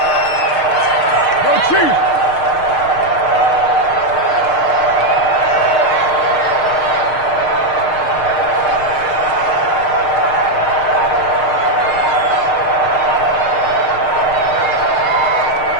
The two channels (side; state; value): right; late; 6.6 ms